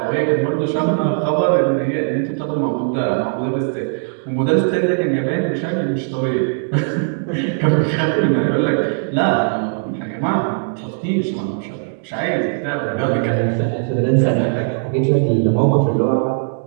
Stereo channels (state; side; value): silent; left; digital silence